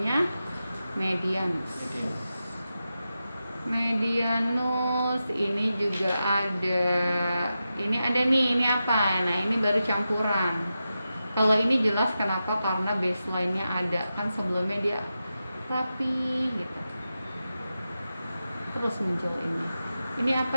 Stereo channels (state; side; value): inverted; both; correlation -0.91